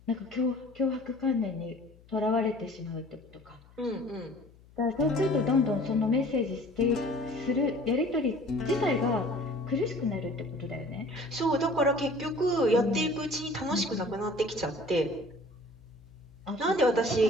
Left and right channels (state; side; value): noise; left; hum, 25 dB below the sound